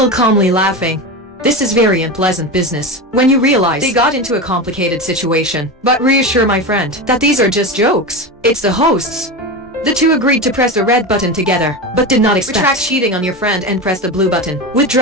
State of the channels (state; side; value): normal; both; correlation 0.22